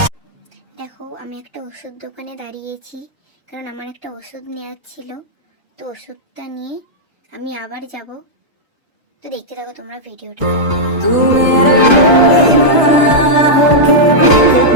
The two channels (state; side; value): normal; both; correlation -0.07